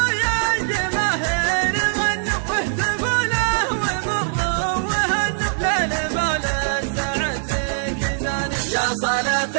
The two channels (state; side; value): silent; left; 64 dB below the other